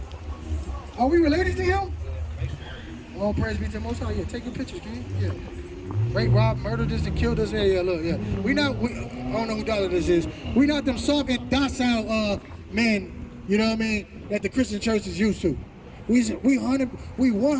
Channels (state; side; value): identical; both; correlation 1.00